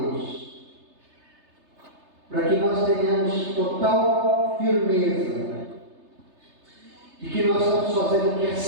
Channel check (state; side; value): late; left; 3.3 ms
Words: para que nós tenhamos total firmeza de que nós estamos fazendo o que é